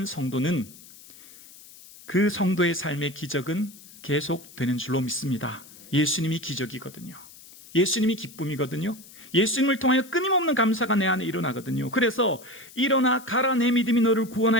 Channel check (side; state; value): left; noise; hiss, 20 dB below the sound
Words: 성도는 그 성도의 삶의 기적은 계속되는 줄로 믿습니다. 예수님이 기적이거든요. 예수님이 기쁨이거든요. 예수님을 통하여 끊임없는 감사가 내 안에 일어나거든요. 그래서 일어나 가라 내 믿음이 너를